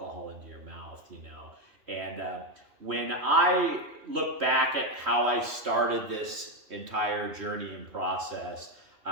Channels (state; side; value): late; left; 3.1 ms